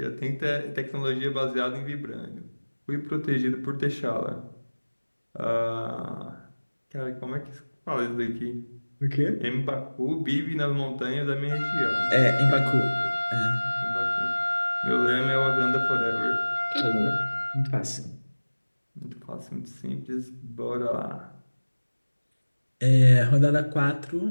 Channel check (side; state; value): both; inverted; correlation -1.00